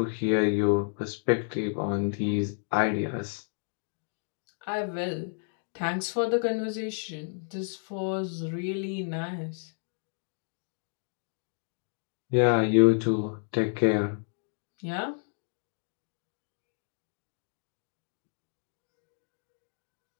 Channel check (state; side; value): silent; right; 57 dB below the other